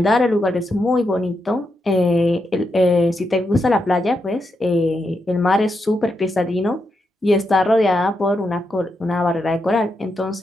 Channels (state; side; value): normal; both; correlation 0.84